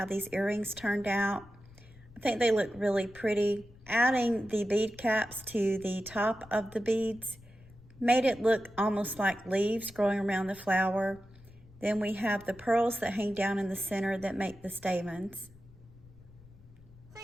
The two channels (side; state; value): left; noise; rumble, 23 dB below the sound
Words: these earrings turned out. I think they look really pretty. Adding the bead caps to the top of the beads made it look almost like leaves growing around the flower. Then we have the pearls that hang down in the center that make the stamens. I